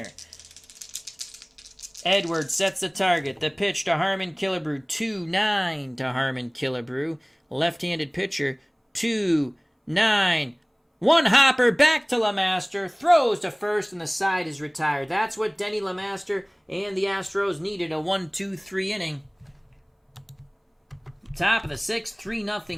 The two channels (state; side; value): identical; both; correlation 1.00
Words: Edwards sets the target. The pitch to Harmon Killebrew. 2-9 to Harmon Killebrew. Left-handed pitcher. 2-9. One hopper back to LeMaster. Throws to first, and the side is retired. That's what Denny LeMaster and the Astros needed. A 1-2-3 inning. Top of the 6th,